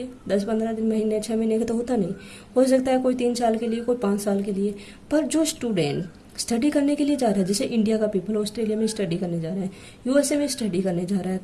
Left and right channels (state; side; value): identical; both; correlation 1.00